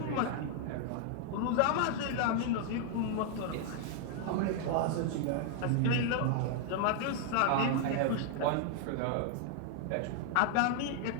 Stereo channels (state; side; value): different; both; correlation 0.00